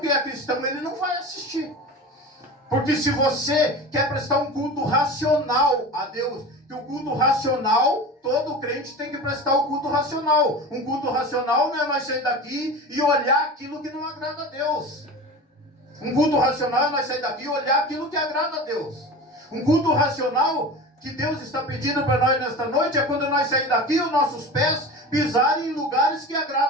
é cristão, ele não vai assistir. Porque se você quer prestar um culto racional a Deus, que o culto racional, todo crente tem que prestar o culto racional. Um culto racional não é nós sair daqui e olhar aquilo que não agrada a Deus. Um culto racional é nós sair daqui e olhar aquilo que agrada a Deus. Um culto racional que Deus está pedindo para nós nesta noite é quando nós sair daqui, os nossos pés pisarem em lugares que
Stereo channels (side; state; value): both; normal; correlation 0.32